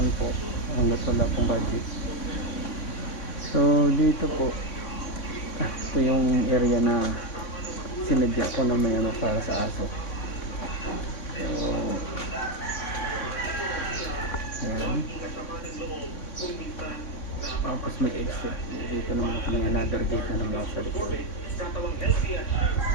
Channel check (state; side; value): late; right; 3.6 ms